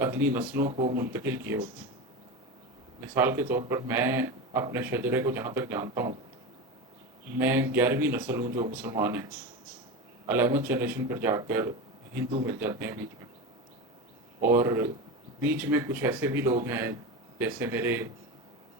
نسلوں کو منتقل کیے ہوتے ہیں۔ مثال کے طور پر میں اپنے شجرے کو جہاں تک جانتا ہوں، میں 11ویں نسل ہوں جو مسلمان ہیں۔ 11 جنریشن پر جا کر ہندو مل جاتے ہیں بیچ میں، اور بیچ میں کچھ ایسے بھی لوگ ہیں جیسے میرے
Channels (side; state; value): both; normal; correlation 0.23